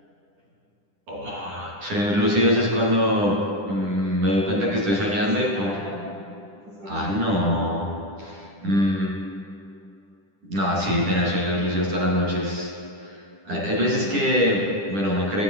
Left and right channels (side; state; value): left; late; 10 ms